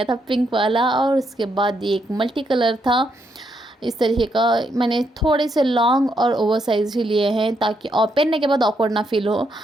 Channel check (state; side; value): normal; both; correlation 0.77